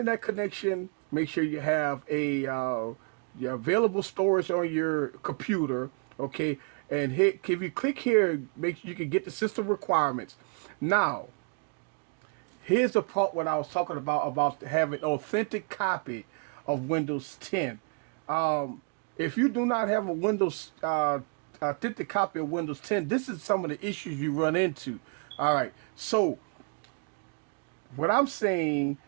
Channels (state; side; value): quieter; left; 37.7 dB